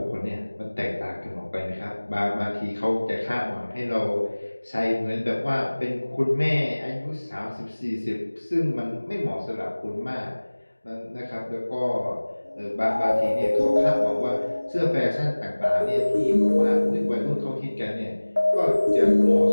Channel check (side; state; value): both; inverted; correlation -1.00